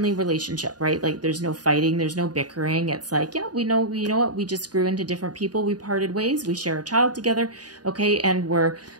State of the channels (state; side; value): late; left; 0.69 ms